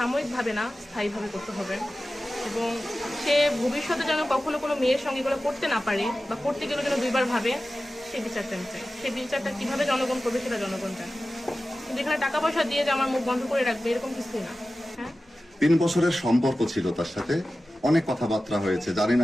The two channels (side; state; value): both; normal; correlation 0.95